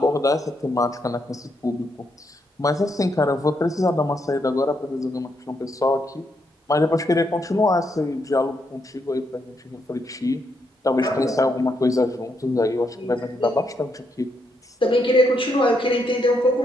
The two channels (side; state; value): both; normal; correlation 0.78